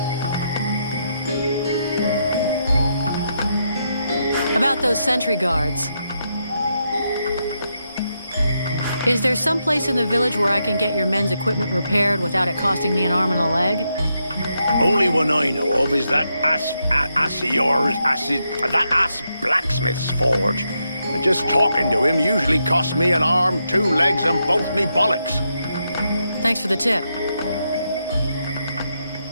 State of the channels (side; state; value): both; inverted; correlation -0.82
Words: About those sentry guards. Is there some place in the village where I can get your men's equipment repaired without it costing me an arm and a leg? Only one I know of is that ass blacksmith's forge. And just talking to him usually costs me an arm, 2 legs, and both me bollocks. Thanks for the tip.